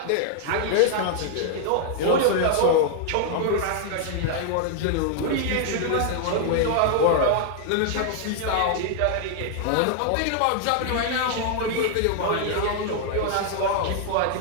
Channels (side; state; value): both; different; correlation 0.00